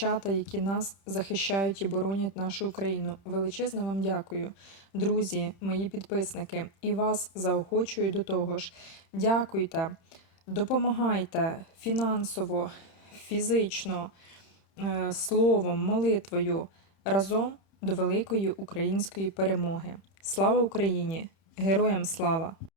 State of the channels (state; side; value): late; right; 31 ms